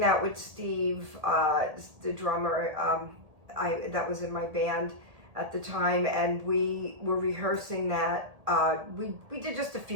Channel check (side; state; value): left; late; 1.8 ms